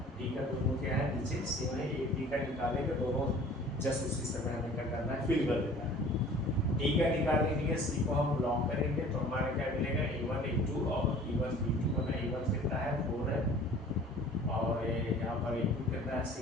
t का दोनों क्या है नीचे सेम है, एक t का निकालेंगे दोनों जस्ट उसी समय हमें क्या करना है, फिल कर देना है। टी का निकालने के लिए सी को हम लॉन्ग करेंगे तो हमारा क्या मिलेगा, a1 a2 और e1 b2 बना। a1 कितना है 4 है और यहाँ पर a2 कितना है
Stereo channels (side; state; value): both; normal; correlation 0.48